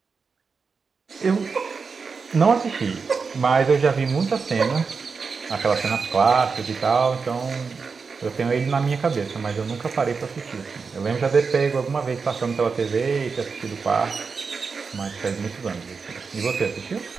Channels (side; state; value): left; quieter; 5.1 dB